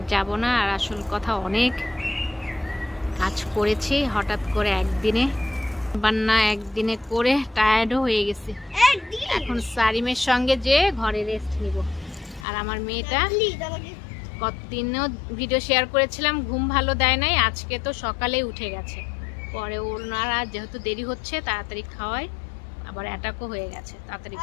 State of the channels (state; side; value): drops out; right; at 12.5 s